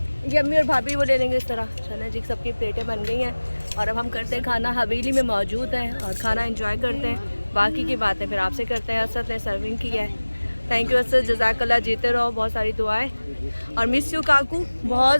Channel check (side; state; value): both; inverted; correlation -1.00